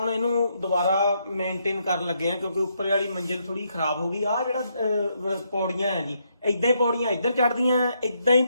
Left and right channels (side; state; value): both; inverted; correlation -0.76